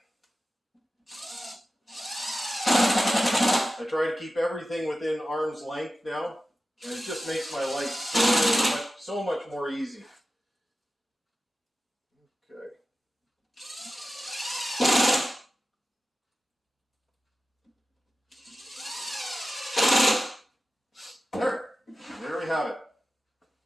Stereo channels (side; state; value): both; normal; correlation 0.94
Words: I try to keep everything within arm's length now, and it just makes my life so much more easy. Okay. There we have it.